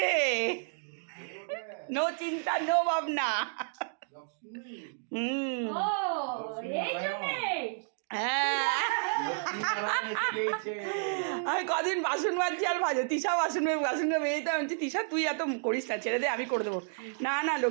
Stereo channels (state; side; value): silent; left; digital silence